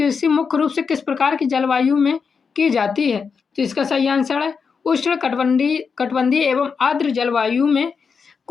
मुख्य रूप से किस प्रकार की जलवायु में की जाती है? तो इसका सही आंसर है उष्ण कटिबंधीय एवं आर्द्र जलवायु में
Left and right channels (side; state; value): right; quieter; 5.7 dB